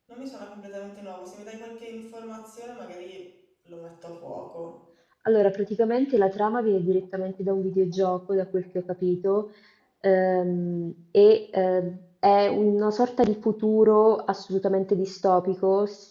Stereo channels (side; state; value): both; identical; correlation 1.00